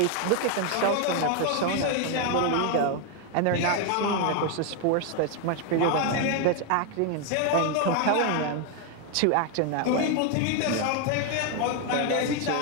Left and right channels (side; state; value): both; different; correlation 0.01